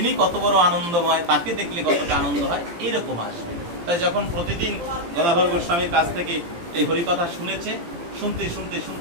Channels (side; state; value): left; late; 17 ms